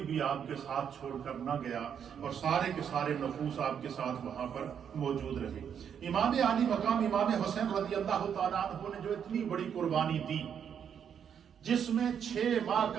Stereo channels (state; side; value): quieter; left; 8.1 dB